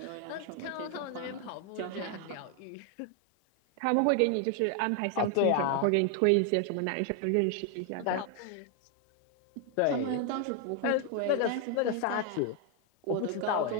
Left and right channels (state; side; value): different; both; correlation 0.01